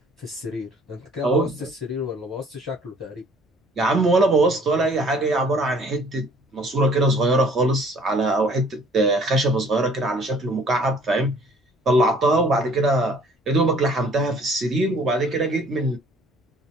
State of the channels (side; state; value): both; normal; correlation 0.56